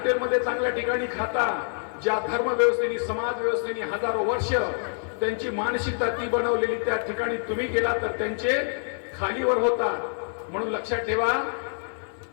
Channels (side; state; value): right; silent; 61 dB below the other